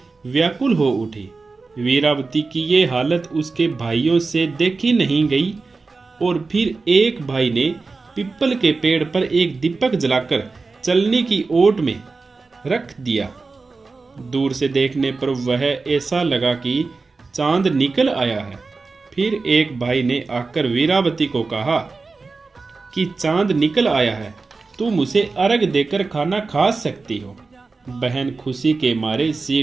व्याकुल हो उठी। वीरावती की ये हालत उसके भाइयों से देखी नहीं गई और फिर एक भाई ने पीपल के पेड़ पर एक दीपक जलाकर चलने की ओट में रख दिया। दूर से देखने पर वह ऐसा लगा कि चांद निकल आया है। फिर एक भाई ने आकर वीरावती को कहा कि चांद निकल आया है, तुम उसे अर्घ देकर खाना खा सकती हो। बहन खुशी के मारे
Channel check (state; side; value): quieter; left; 4.0 dB